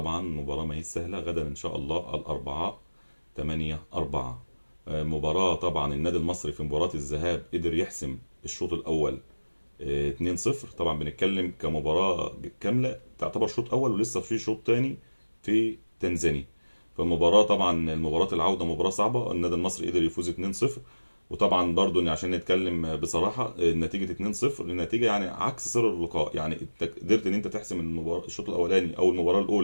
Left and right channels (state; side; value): inverted; both; correlation -1.00